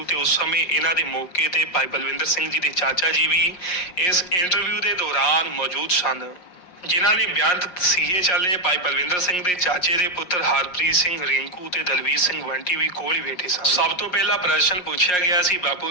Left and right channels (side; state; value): right; late; 5.6 ms